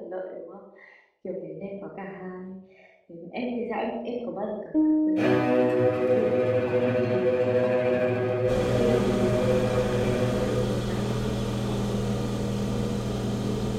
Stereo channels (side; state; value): both; identical; correlation 1.00